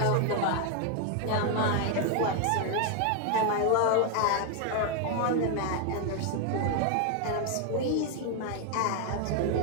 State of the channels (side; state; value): both; different; correlation 0.01